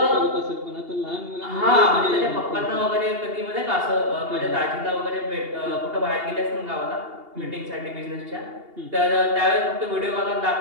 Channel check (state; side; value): late; left; 2.8 ms